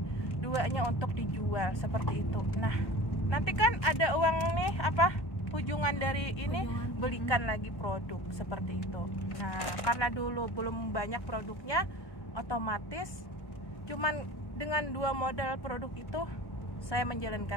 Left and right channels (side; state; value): right; late; 1.1 ms